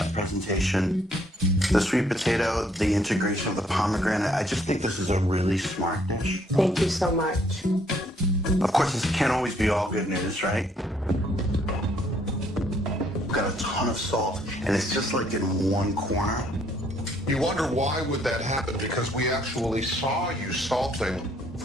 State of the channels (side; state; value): both; normal; correlation 0.66